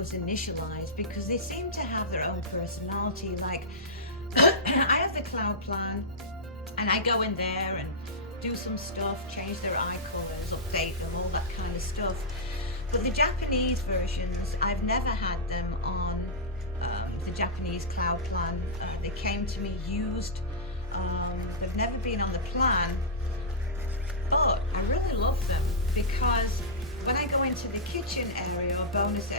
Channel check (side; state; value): both; normal; correlation -0.14